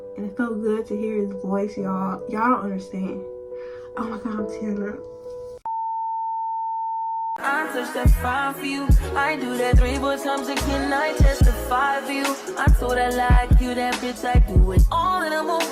And it felt good to hear his voice, y'all. Y'all don't understand. Oh my God, I'm tearing up. I touch that 5 for you. I do that 3 but times again. I testify for you. I told I like you, that bitch. I do it all and I'm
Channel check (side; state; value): both; identical; correlation 1.00